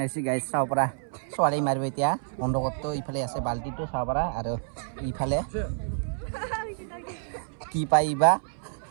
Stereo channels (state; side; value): silent; left; 59 dB below the other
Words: আহিছে গাইছ চাব পৰা ছোৱালী মাৰিব এতিয়া অন্ধকপটো ইফালে আছে বাল্টিটো চাব পৰা আৰু ইফালে কি পাইবা